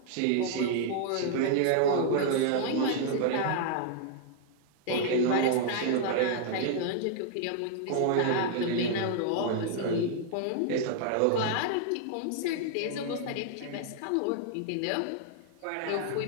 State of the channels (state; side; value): different; both; correlation -0.01